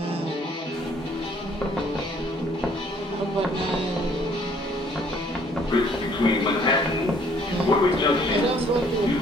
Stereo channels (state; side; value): normal; both; correlation 0.61